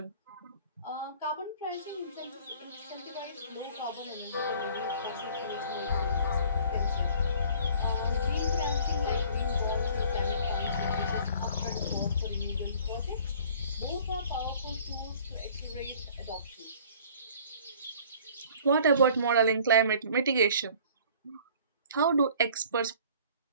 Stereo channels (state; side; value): inverted; both; correlation -0.51